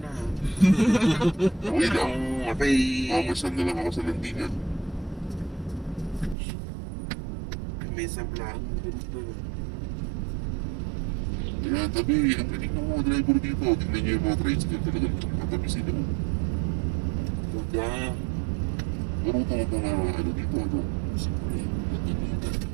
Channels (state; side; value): drops out; left; at 6.4 s